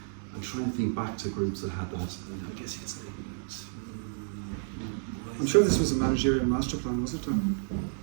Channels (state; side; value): silent; left; 57 dB below the other